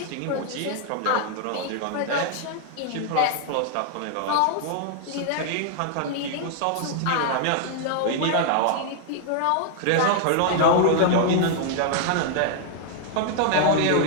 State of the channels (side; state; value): both; different; correlation 0.00